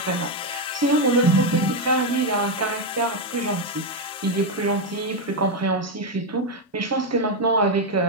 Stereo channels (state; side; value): normal; both; correlation 0.05